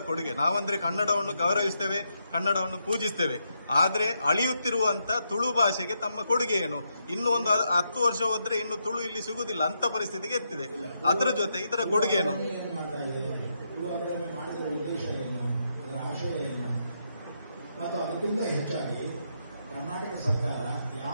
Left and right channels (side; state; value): both; inverted; correlation -0.81